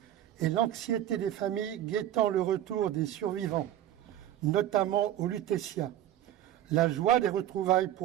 et l'anxiété des familles guettant le retour des survivants, notamment au Lutetia, la joie des retrouvailles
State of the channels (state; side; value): quieter; left; 12.1 dB